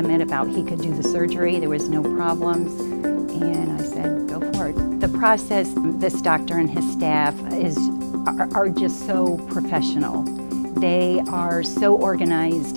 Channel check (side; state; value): both; inverted; correlation -1.00